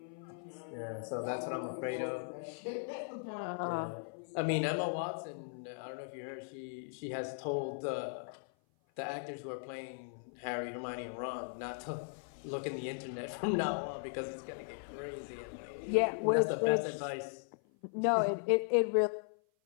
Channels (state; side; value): silent; right; 53 dB below the other